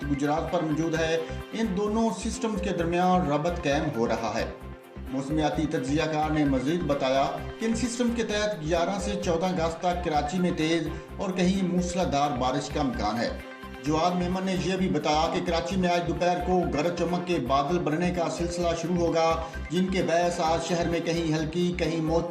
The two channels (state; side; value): identical; both; correlation 1.00